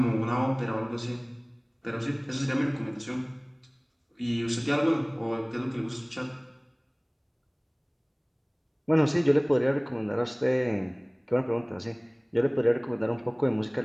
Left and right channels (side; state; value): both; identical; correlation 1.00